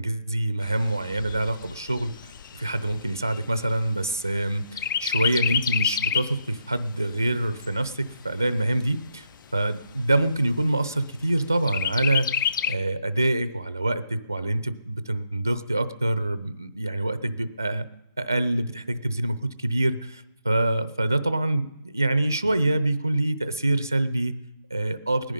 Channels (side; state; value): both; inverted; correlation -0.83